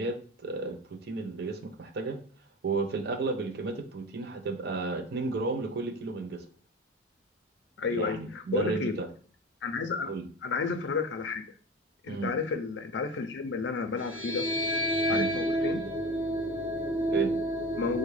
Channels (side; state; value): both; normal; correlation 0.30